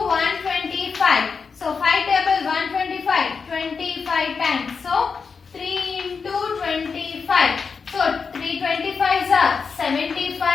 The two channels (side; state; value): right; quieter; 5.4 dB